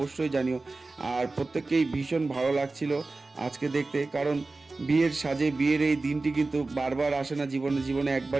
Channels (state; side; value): quieter; left; 3.4 dB